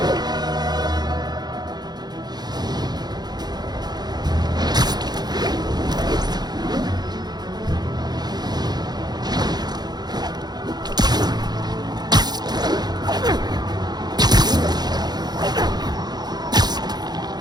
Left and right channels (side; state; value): left; late; 0.20 ms